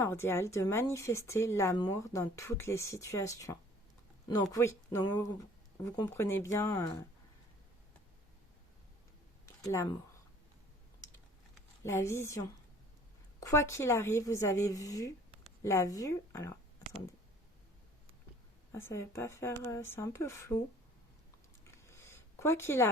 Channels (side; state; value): both; normal; correlation 0.53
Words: de manifester l'amour dans toutes les situations. Donc oui, donc vous comprenez bien l'amour. La vision. Quoi qu'il arrive, vous avez vu la vue. Alors, attendez. Ah, ça ne va pas faire... c'est un peu flou. Quoi qu'il